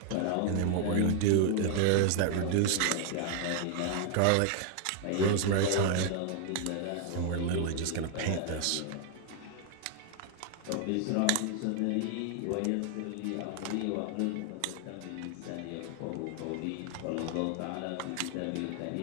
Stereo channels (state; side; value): different; both; correlation 0.00